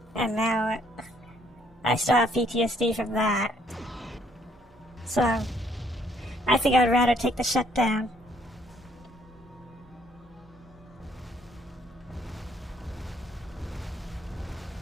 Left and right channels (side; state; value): both; normal; correlation 0.66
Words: And now I still have PTSD from that. So I think I'd rather take the shutdown.